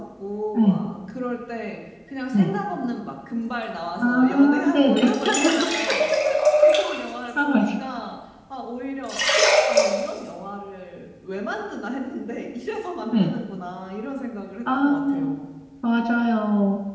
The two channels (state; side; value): identical; both; correlation 1.00